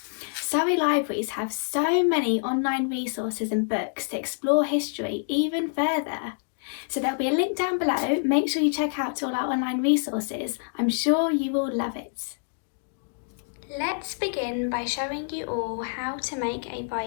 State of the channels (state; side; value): silent; right; digital silence